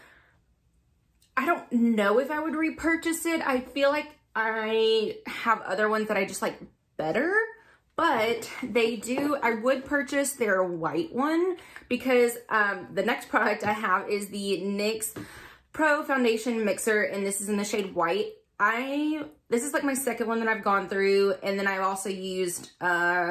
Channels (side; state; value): both; identical; correlation 1.00